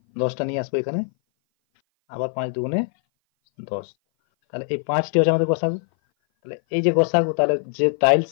10টা নিয়ে আসবো এখানে, আবার 5 দুগুণে 10। তাহলে এই 5টি হচ্ছে আমাদের গোসাগু। তাহলে এই যে গোসাগু, তাহলে যে টাইলস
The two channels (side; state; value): right; silent; 58 dB below the other